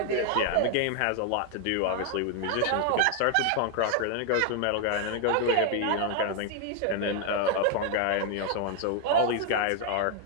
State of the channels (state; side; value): different; both; correlation 0.00